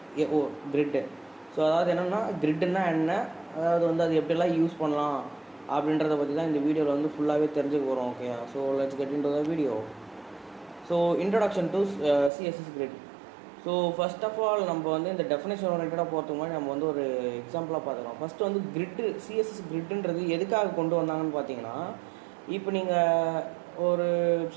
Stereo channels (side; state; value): left; drops out; at 12.3 s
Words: கிரிட்டு. ஸோ அதாவது என்னென்னா கிரிட்டுன்னா என்ன, அதாவது வந்து அது எப்படிலாம் யூஸ் பண்ணலாம் அப்படின்றத பற்றி தான் இந்த வீடியோவில் வந்து ஃபுல்லாகவே தெரிஞ்சுக்க போகிறோம். Okay, so let's get into the video. So introduction to CSS grid. So first of all நம்ம வந்து இந்த டெஃபினேஷன் ஓரியன்டாக போகிறதுக்கு முன்னாடி நம்ம வந்து ஒரு எக்ஸாம்பிளாக பார்த்துக்கலாம். ஃபஸ்ட்டு வந்து கிரிட்டு, சிஎஸ்எஸ் கிரிட்டுன்றது எதுக்காக கொண்டு வந்தாங்கன்னு பார்த்தீங்கன்னா, இப்போ நீங்கள் ஒரு